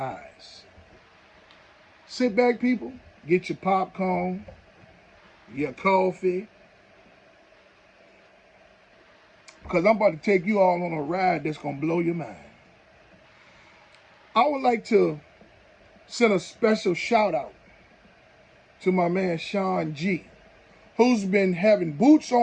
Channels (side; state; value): both; identical; correlation 1.00